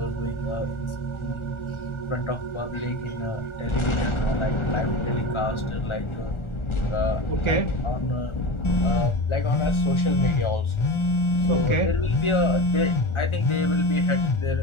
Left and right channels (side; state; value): right; late; 1.4 ms